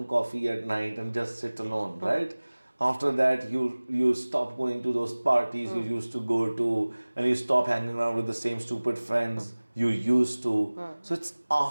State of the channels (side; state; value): both; inverted; correlation -1.00